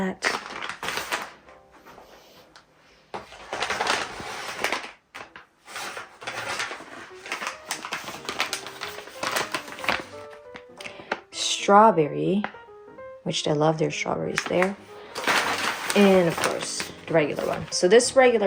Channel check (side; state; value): both; identical; correlation 1.00